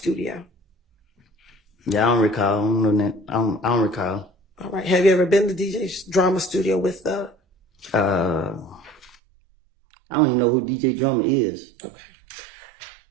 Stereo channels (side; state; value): left; drops out; at 9.2 s